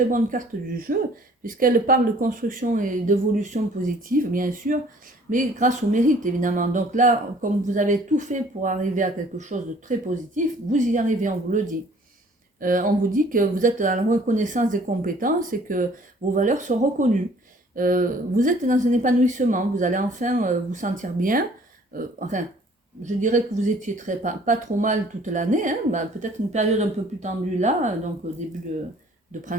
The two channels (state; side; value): normal; both; correlation 0.55